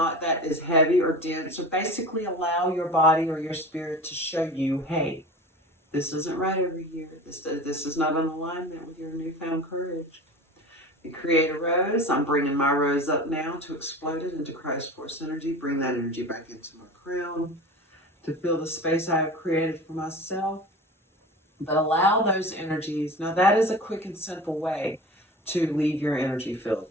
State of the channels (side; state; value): both; normal; correlation 0.35